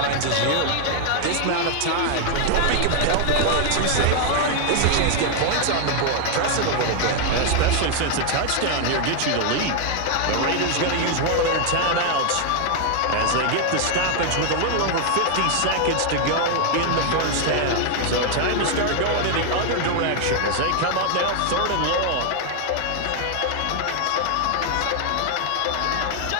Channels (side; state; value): both; different; correlation 0.00